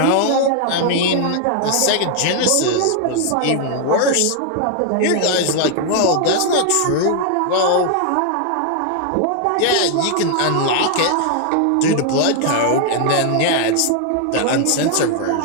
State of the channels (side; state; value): both; different; correlation 0.00